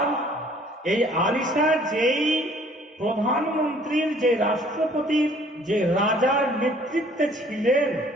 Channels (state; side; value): normal; both; correlation 0.57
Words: এই আলিশা যেই প্রধানমন্ত্রীর, যে রাষ্ট্রপতির, যে রাজার নেতৃত্বে ছিলেন,